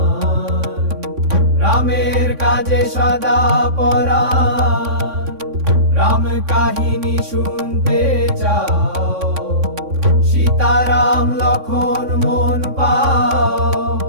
রামের কাজে সদা পরাণ। রাম কাহিনী শুনতে চাও, সীতারাম লক্ষণ মন পাও।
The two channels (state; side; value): late; left; 3.6 ms